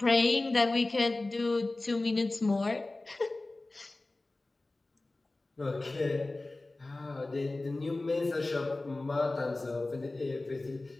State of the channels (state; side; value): quieter; right; 3.0 dB